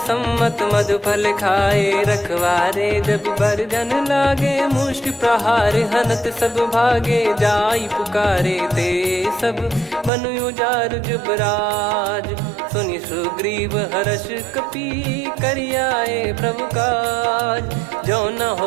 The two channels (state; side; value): drops out; left; at 10.1 s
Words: सम्मत मधुफल खाए रखवारे जब बरजन लागे मुष्टि प्रहार हनत सब भागे जाई पुकारे ते सब बनु उजार जुबराज सुनि सुग्रीव हर्ष कपि करियाए प्रभु काज जो न